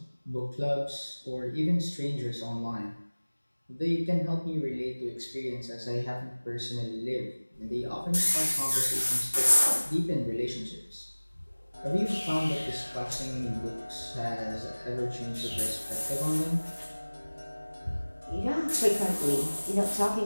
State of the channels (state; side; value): inverted; both; correlation -1.00